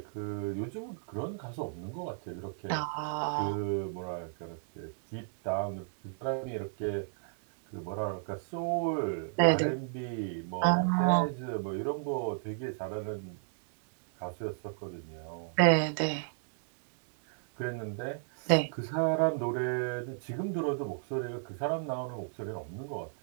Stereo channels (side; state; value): left; silent; digital silence